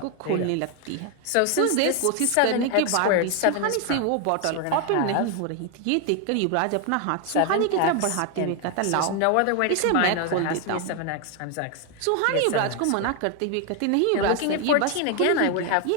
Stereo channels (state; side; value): different; both; correlation 0.01